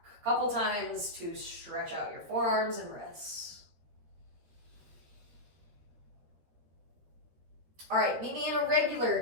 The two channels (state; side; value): late; left; 13 ms